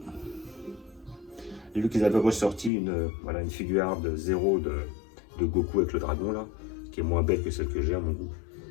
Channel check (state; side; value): drops out; right; at 2.7 s